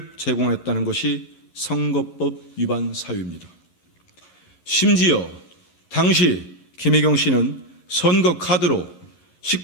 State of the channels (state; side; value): late; right; 11 ms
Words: 제공했다는 것이 선거법 위반 사유입니다. 심지어 당시 김혜경 씨는 선거 카드로